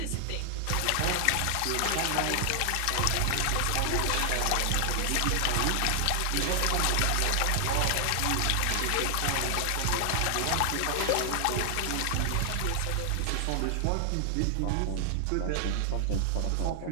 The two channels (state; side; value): different; both; correlation 0.00